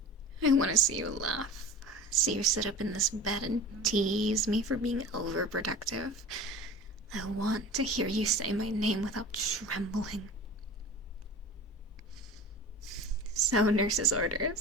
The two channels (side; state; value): both; normal; correlation 0.37